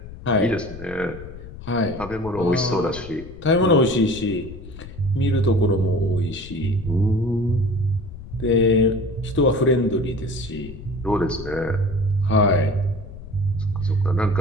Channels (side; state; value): left; noise; rumble, 14 dB below the sound